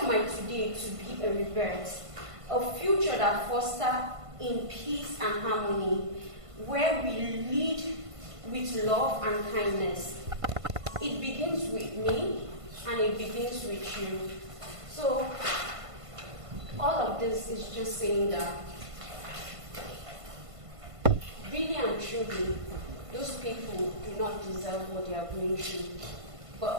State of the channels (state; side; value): late; left; 1.5 ms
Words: my today to be a rebirth, a future that fosters in peace and harmony, where we lead with love and kindness. It begins with me, and it begins with you. So, all of this is just saying that, really and truly, those people do not deserve what they are going through.